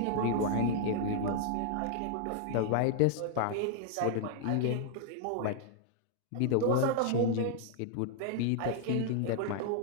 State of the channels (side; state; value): both; different; correlation 0.00